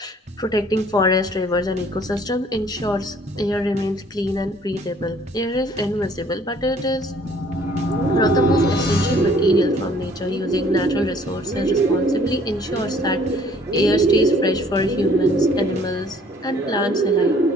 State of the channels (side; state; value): both; normal; correlation 0.58